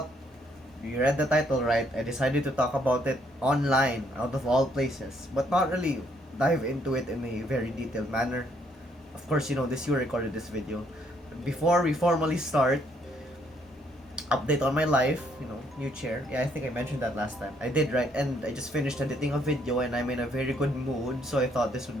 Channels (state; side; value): normal; both; correlation 0.69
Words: you read the title right. I decided to talk about it online, out of all places, but not really dive into it in a very detailed manner. Of course, this you recorded this video. Before we formally start, update on my life, new chair. Yeah, I think I mentioned that last time. I did, right? And I just finished editing a video and I'm in a very good mood, so I thought this